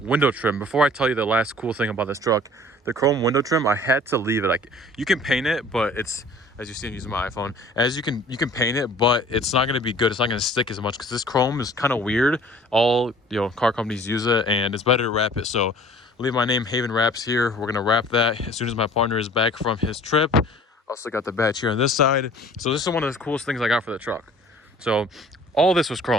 window trim. Before I tell you the last cool thing about this truck, the chrome window trim, I had to leave it. Like, you can paint it, but it's, as you see, I'm using my iPhone, as you can paint it, but it's not going to be good. It's not going to stick as much because this chrome is kind of weird. All, car companies use it, and it's better to wrap it. So leave my name, Haven Wraps, here. We're going to wrap that as soon as my partner is back from his trip. Also got the badge here on this side. So this is one of the coolest things I got for the truck. So all this was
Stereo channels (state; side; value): normal; both; correlation 0.49